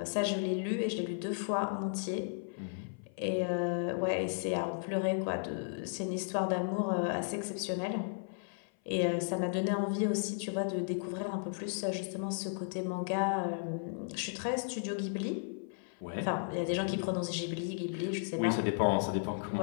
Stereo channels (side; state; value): right; silent; 55 dB below the other